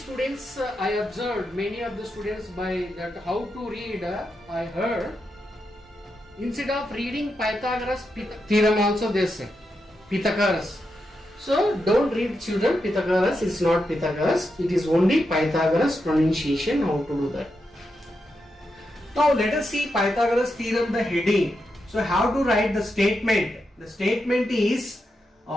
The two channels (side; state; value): both; normal; correlation 0.86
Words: I observed, many of the students by that how to read, I heard, instead of reading Pythagoras theorem also they say Pythagoras. So don't read, children, Pythagoras is not Pythagoras, it is only Pythagoras pronunciation, how to do that. Now let us see Pythagoras theorem, the heading. So how to write the statement? The statement is